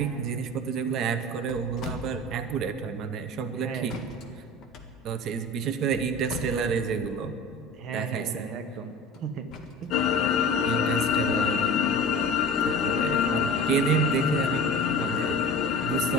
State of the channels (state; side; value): normal; both; correlation 0.36